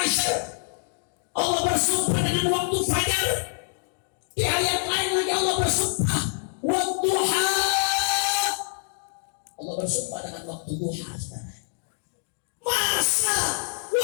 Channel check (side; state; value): right; silent; digital silence